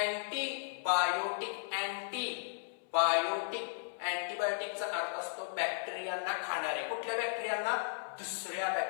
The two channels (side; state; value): right; silent; 54 dB below the other